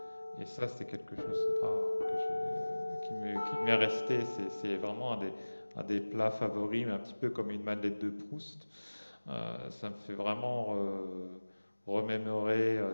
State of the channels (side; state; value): both; inverted; correlation -1.00